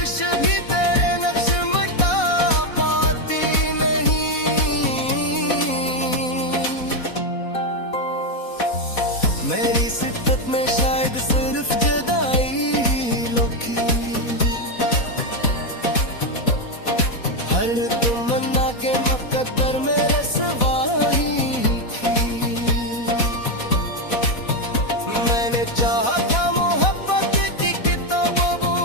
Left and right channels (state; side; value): late; right; 4.1 ms